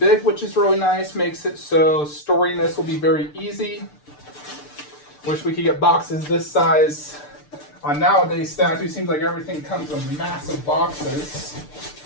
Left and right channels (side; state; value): right; late; 6.7 ms